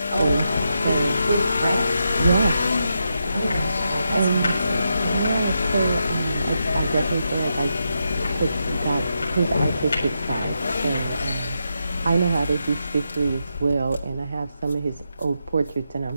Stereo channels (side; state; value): both; inverted; correlation -0.84